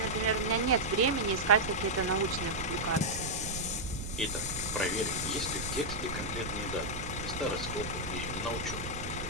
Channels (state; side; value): noise; right; rumble, 7 dB below the sound